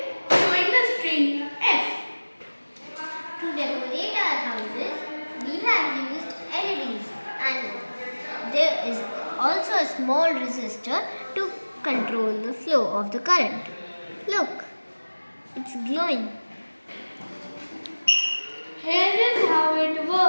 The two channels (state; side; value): inverted; both; correlation -1.00